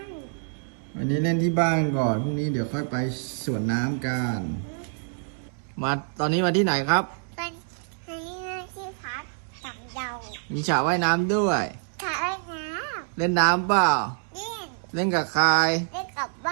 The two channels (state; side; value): silent; left; 61 dB below the other